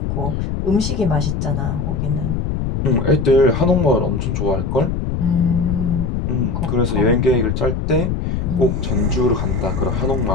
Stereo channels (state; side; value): noise; left; rumble, 1 dB below the sound